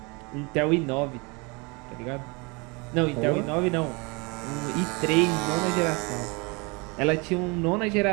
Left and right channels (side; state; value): left; quieter; 28.7 dB